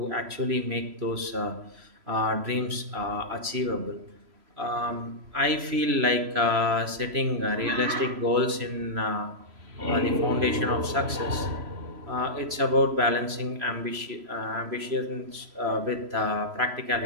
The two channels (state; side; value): late; left; 3.0 ms